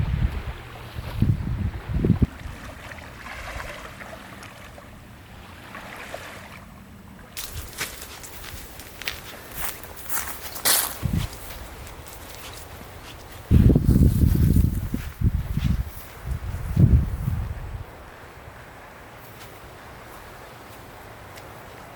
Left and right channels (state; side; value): identical; both; correlation 1.00